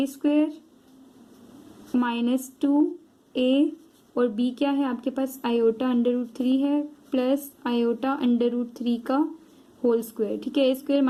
स्क्वायर -2a और b क्या है आपके पास, आयोटा √3 है प्लस आयोटा √3 का होल स्क्वायर। ठीक है, a square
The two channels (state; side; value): identical; both; correlation 1.00